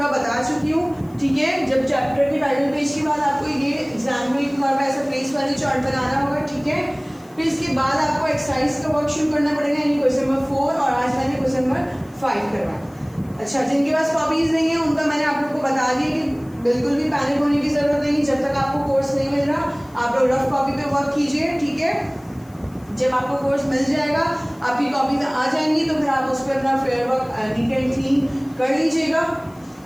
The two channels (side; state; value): left; noise; hiss, 29 dB below the sound